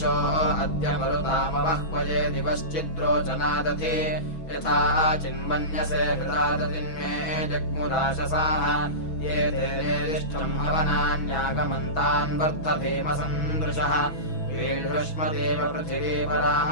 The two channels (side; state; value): right; late; 6.1 ms